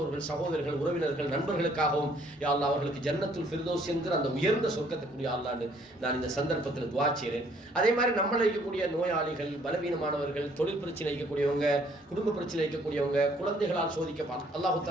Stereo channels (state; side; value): normal; both; correlation 0.63